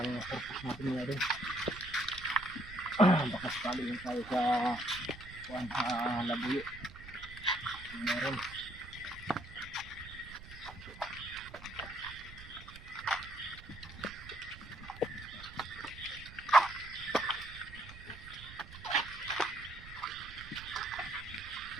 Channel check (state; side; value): noise; right; rumble, 15 dB below the sound